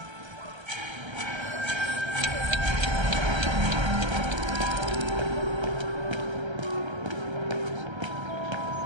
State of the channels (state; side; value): late; left; 1.3 ms